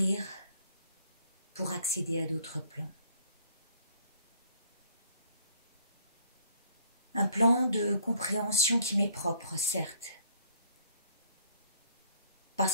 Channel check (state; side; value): inverted; both; correlation -0.60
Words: pour accéder à d'autres plans. Un plan de compréhension qui m'est propre, certes,